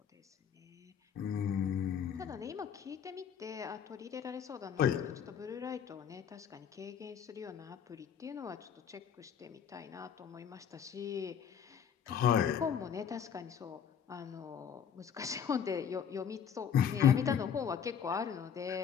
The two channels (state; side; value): quieter; right; 8.0 dB